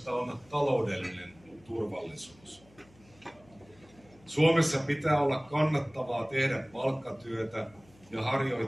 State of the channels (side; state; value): left; noise; hum, 27 dB below the sound